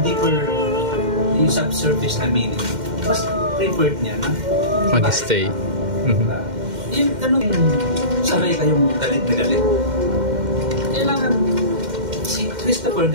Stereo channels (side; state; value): left; late; 2.1 ms